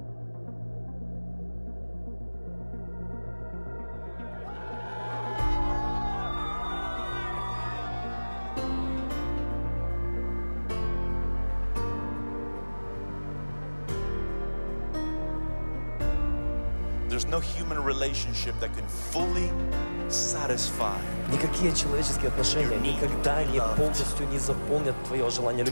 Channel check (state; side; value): inverted; both; correlation -1.00